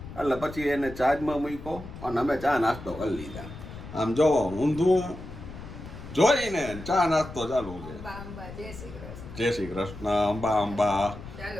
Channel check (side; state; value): left; noise; rumble, 13 dB below the sound